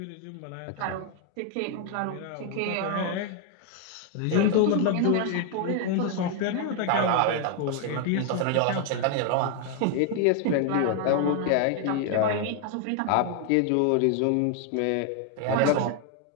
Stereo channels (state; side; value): different; both; correlation 0.00